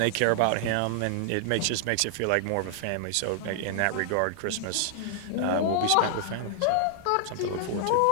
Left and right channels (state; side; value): different; both; correlation 0.00